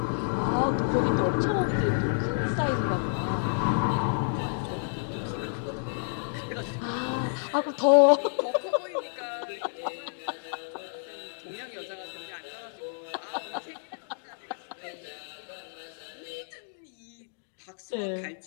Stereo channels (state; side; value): silent; right; digital silence